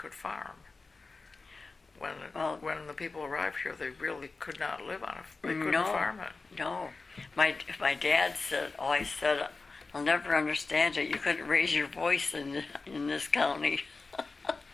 farm. When the people arrived here, they really could not live on it. They couldn't farm it. No. My dad always said, I'll never understand it. You couldn't raise your voice in this county.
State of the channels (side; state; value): right; quieter; 3.9 dB